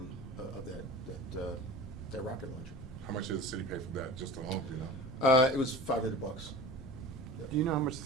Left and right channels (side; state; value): both; normal; correlation 0.38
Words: that rocket launcher. How much did the city pay for that, just alone, do you know? It was $500. Yeah. Do you know how much